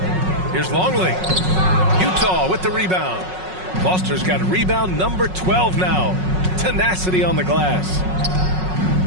Here's Longley. Utah with the rebound. Foster's got a rebound number 12 now. Tenacity on the glass.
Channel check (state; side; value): late; left; 5.4 ms